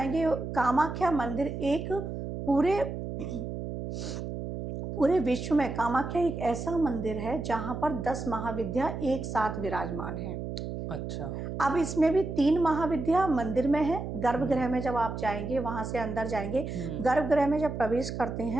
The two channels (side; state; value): right; noise; hum, 6 dB below the sound